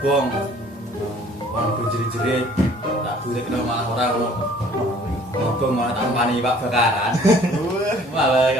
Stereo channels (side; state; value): both; normal; correlation 0.55